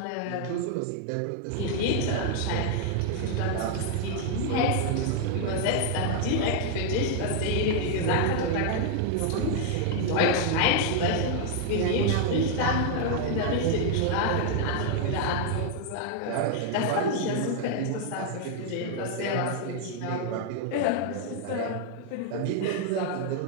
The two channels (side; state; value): both; different; correlation 0.00